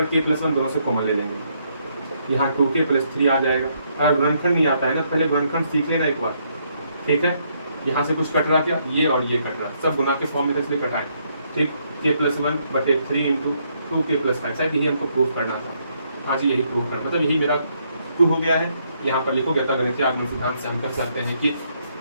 k+1 दोनों से कॉमन ले लेंगे, यहाँ 2k+3 आ जाएगा। अगर गुणनखंड नहीं आता है ना, पहले गुणनखंड सीख लेना एक बार। ठीक है, यहाँ से कुछ कट रहा, क्या ये और ये कट रहा, सब गुना के फॉर्म में इसलिए कटाए। ठीक, k+1/3 × 2k+5, शायद यही हमको प्रूफ करना था। हाँ जी, यही प्रूफ करना, मतलब यही मेरा प्रूफ हो गया है। यहाँ पर लिखोगे तो गणितीय आगमन सिद्धांत से हम कह सकते हैं कि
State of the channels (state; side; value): inverted; both; correlation -0.73